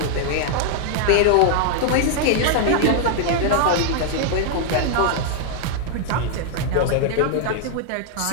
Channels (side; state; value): both; different; correlation 0.00